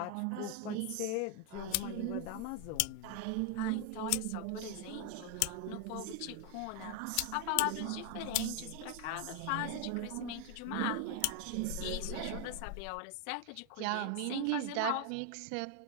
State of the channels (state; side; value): different; both; correlation 0.01